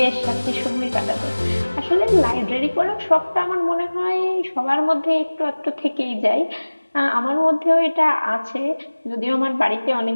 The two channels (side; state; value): both; inverted; correlation -1.00